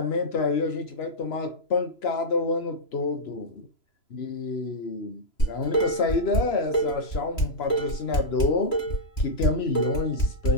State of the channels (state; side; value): late; right; 3.0 ms